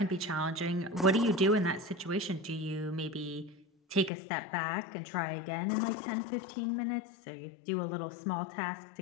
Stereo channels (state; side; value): drops out; right; at 4.1 s